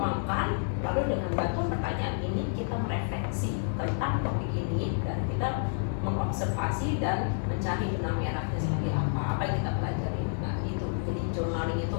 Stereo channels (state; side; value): silent; right; digital silence